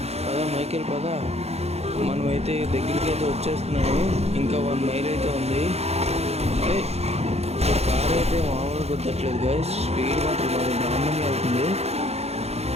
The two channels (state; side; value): late; left; 0.31 ms